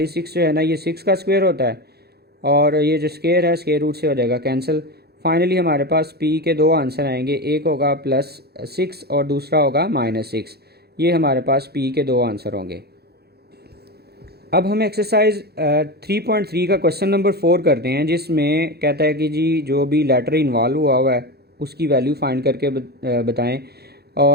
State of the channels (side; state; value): left; late; 0.47 ms